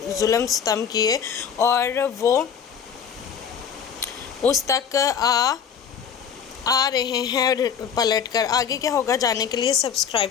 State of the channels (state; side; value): quieter; right; 7.6 dB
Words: जुल्म सितम किए और वो उस तक आ रहे हैं पलट कर। आगे क्या होगा जानने के लिए सब्सक्राइब